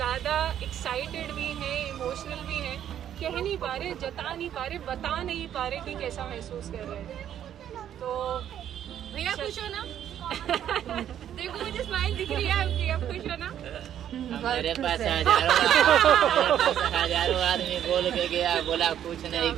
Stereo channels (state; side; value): quieter; left; 10.3 dB